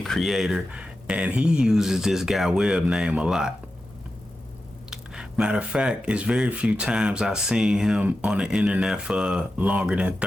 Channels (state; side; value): normal; both; correlation 0.91